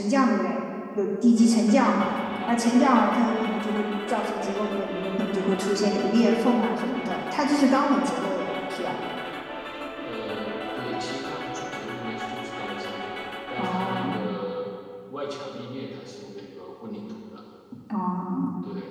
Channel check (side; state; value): both; identical; correlation 1.00